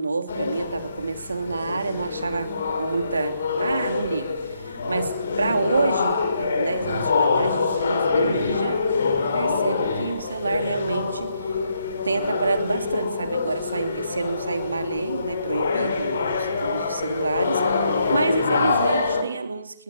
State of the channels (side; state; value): both; inverted; correlation -0.76